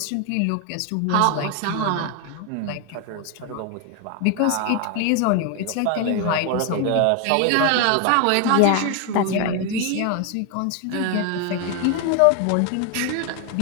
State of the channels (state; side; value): different; both; correlation 0.01